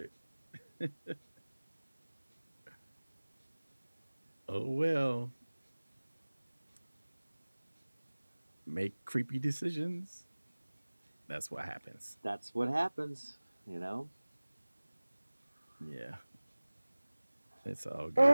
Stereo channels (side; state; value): both; inverted; correlation -1.00